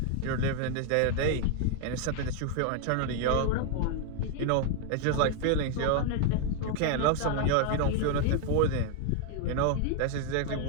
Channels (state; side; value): different; both; correlation 0.00